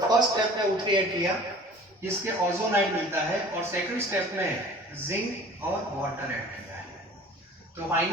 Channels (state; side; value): normal; both; correlation 0.45